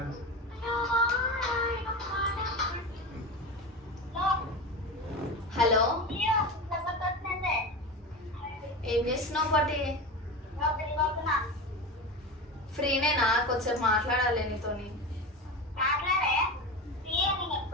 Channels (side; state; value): both; normal; correlation 0.25